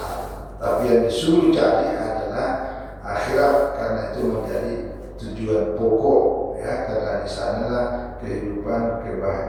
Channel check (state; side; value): identical; both; correlation 1.00